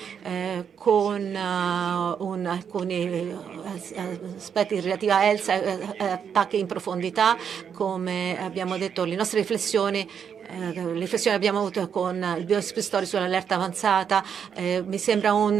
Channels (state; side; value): quieter; left; 7.5 dB